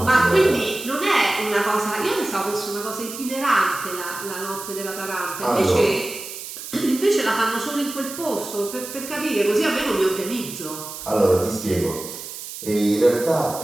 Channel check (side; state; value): right; noise; hiss, 10 dB below the sound